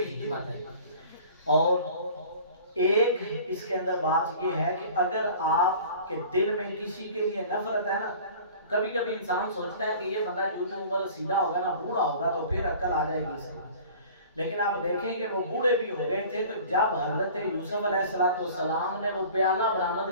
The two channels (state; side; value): inverted; both; correlation -0.45